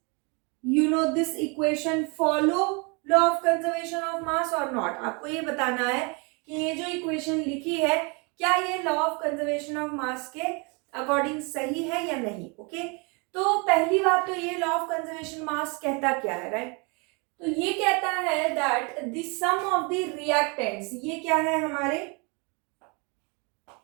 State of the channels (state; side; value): quieter; left; 31.5 dB